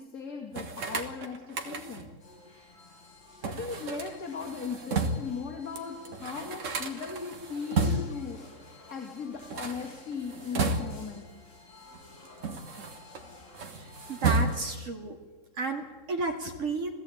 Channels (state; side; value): late; left; 3.7 ms